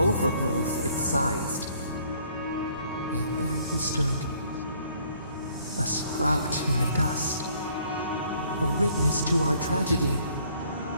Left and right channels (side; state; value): both; inverted; correlation -0.62